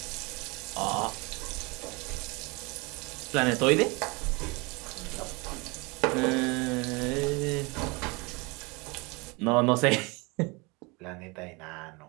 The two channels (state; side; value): quieter; left; 27.2 dB